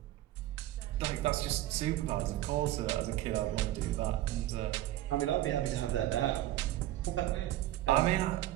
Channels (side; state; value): left; quieter; 14.4 dB